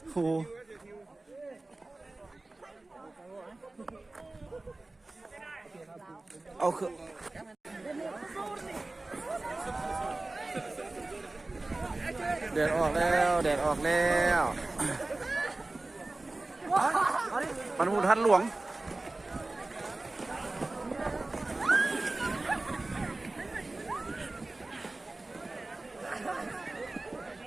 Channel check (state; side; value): quieter; left; 3.0 dB